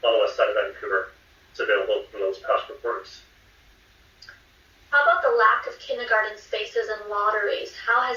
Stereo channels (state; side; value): identical; both; correlation 1.00